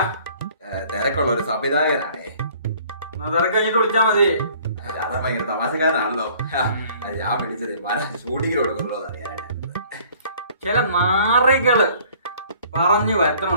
തിരക്കുള്ള ഒരു സംവിധായകനാണേ. തിരക്ക് കഴിഞ്ഞിട്ട് വിളിച്ചാ മതി. അത് ഭയങ്കര തമാശക്കാരനാണല്ലോ. ഞാൻ വിളിച്ചത് മര ഷൂട്ടിങ്ങിന് കൊടുക്കുന്നുണ്ടോ എന്ന് അറിയാനായിട്ട്. ചില നാറികള് പറഞ്ഞു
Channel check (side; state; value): both; inverted; correlation -0.54